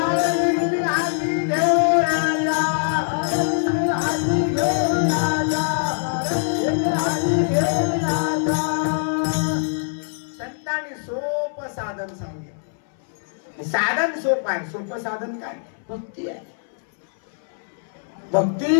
संतांनी सोपं साधन सांगितलं. साधन सोपं आहे. सोपं साधन काय? भक्ती आहे.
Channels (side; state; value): right; silent; 62 dB below the other